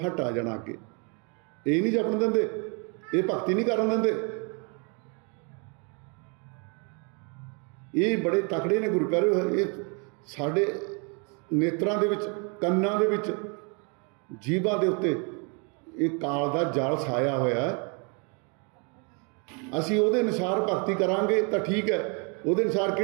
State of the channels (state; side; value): quieter; left; 35.0 dB